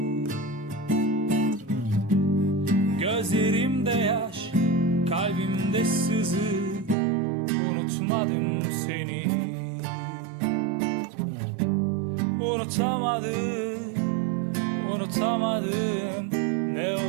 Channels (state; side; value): drops out; left; at 7.0 s